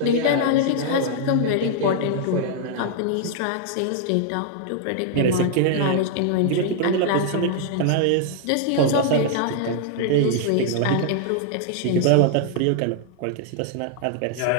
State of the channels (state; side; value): different; both; correlation -0.01